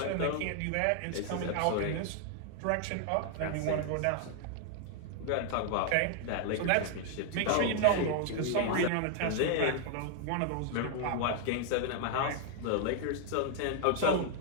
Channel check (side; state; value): both; different; correlation 0.00